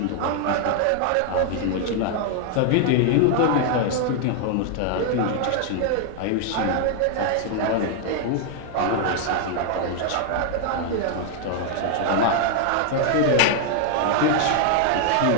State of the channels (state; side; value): different; both; correlation 0.00